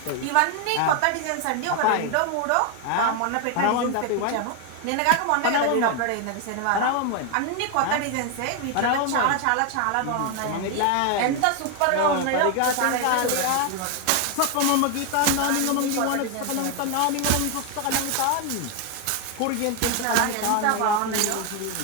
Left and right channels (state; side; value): different; both; correlation 0.01